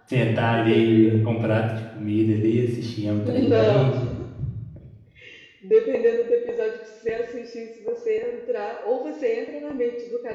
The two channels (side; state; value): both; identical; correlation 1.00